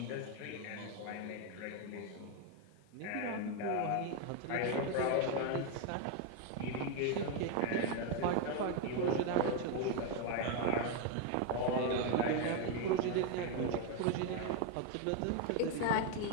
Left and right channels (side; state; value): both; different; correlation 0.01